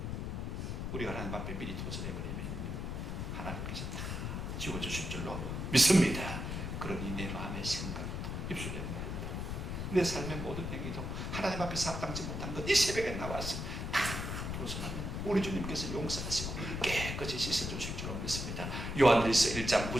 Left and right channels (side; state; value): left; noise; rumble, 4 dB below the sound